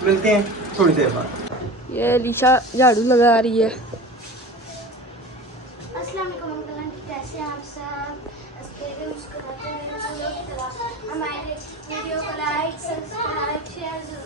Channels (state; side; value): normal; both; correlation 0.35